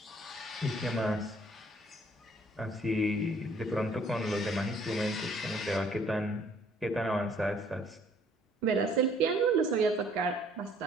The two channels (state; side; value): normal; both; correlation 0.60